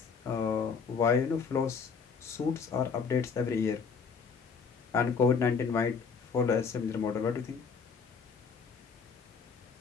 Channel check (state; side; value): quieter; right; 5.6 dB